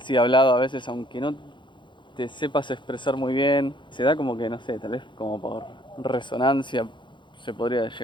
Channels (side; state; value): right; late; 0.23 ms